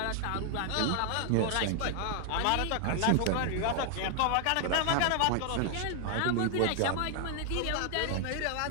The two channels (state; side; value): different; both; correlation 0.00